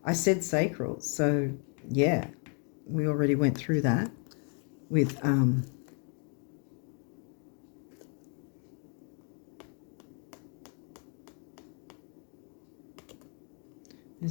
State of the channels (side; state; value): right; quieter; 39.3 dB